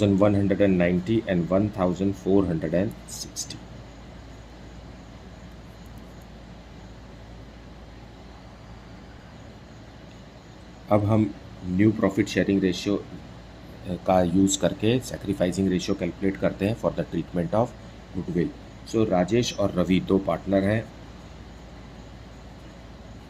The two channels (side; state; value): both; identical; correlation 1.00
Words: and $1,460। अब हम न्यू प्रॉफिट शेयरिंग रेशियो का यूज़ करके सैक्रिफाइसिंग रेशियो कैलकुलेट करते हैं for the treatment of goodwill. So Rajesh और रवि दो पार्टनर हैं।